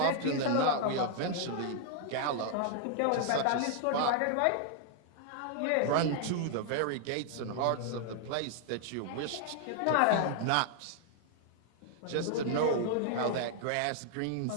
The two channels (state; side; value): different; both; correlation 0.00